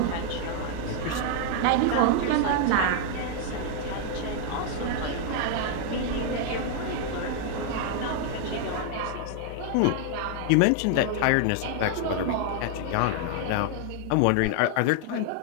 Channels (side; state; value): both; different; correlation 0.00